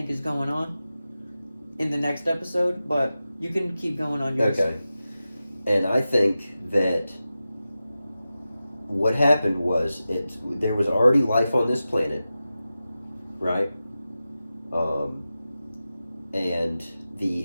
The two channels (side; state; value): both; inverted; correlation -0.93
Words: is going on in the next episode. But you can keep going on yours. Okay. And I think that what happened was there was already life on this planet, right? And